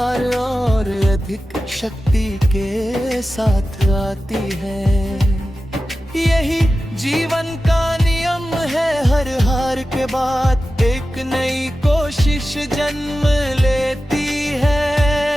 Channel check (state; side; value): normal; both; correlation 0.94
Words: और अधिक शक्ति के साथ आती है। यही जीवन का नियम है, हर हार के बाद एक नई कोशिश जन्म लेती है।